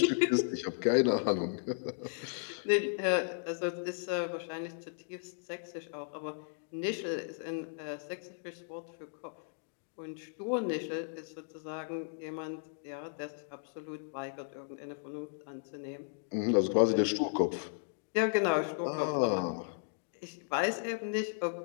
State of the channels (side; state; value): right; silent; digital silence